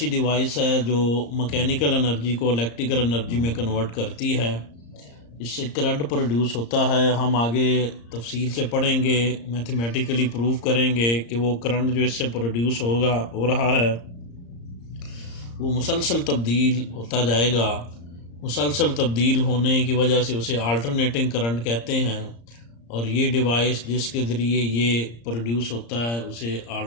डिवाइस है जो मैकेनिकल एनर्जी को इलेक्ट्रिकल एनर्जी में कन्वर्ट करती है। इससे करंट प्रोड्यूस होता है। हम आगे तफसील से पढ़ेंगे, मैथमेटिकली प्रूव करेंगे कि वो करंट जो इससे प्रोड्यूस हो रहा है वो मुसलसल तब्दील होता जाएगा। मुसलसल तब्दील होने की वजह से उसे अल्टरनेटिंग करंट कहते हैं, और ये डिवाइस जिसके ज़रिए ये प्रोड्यूस होता है उसे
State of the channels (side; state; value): right; late; 34 ms